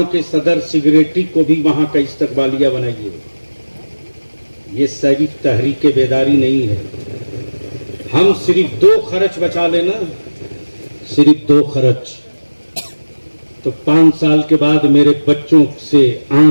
के सदर सेक्रेटरी को भी वहां का इस्तकबालिया बनाइए। ये सिर्फ तहरीक बेदारी नहीं है, हम सिर्फ 2 खर्च बचा लेना, सिर्फ 2 खर्च, तो 5 साल के बाद मेरे बच्चों से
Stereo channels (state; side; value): inverted; both; correlation -1.00